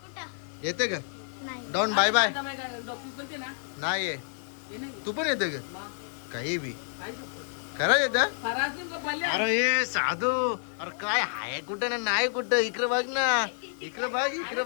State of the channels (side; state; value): right; silent; digital silence